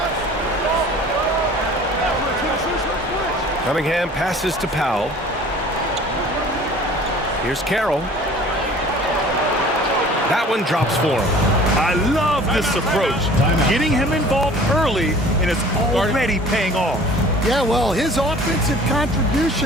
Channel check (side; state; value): both; normal; correlation 0.47